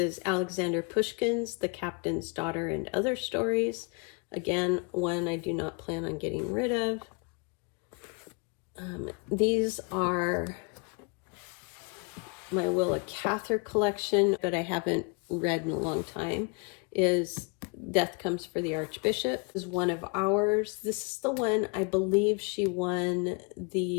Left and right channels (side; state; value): right; quieter; 32.3 dB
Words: Alexander Pushkin's The Captain's Daughter and Other Stories. Again, one I do not plan on getting rid of. These are my Willa Cather collection, but I haven't read in a long time, is Death Comes for the Archbishop. This is one of ours. This is the one I believe she won